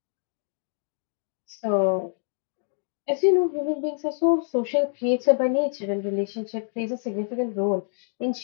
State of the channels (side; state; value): right; silent; digital silence